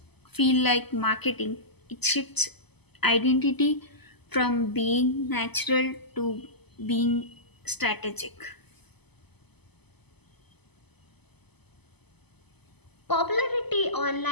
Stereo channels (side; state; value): right; late; 0.99 ms